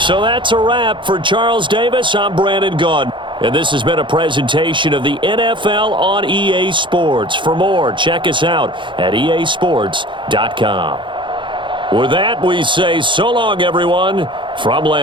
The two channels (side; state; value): left; late; 0.23 ms